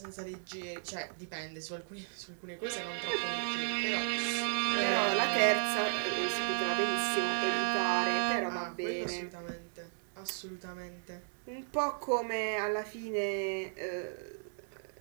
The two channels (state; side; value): silent; left; digital silence